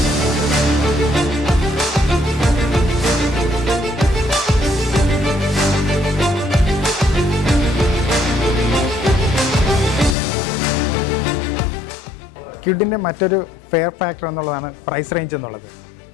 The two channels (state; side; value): drops out; right; at 10.2 s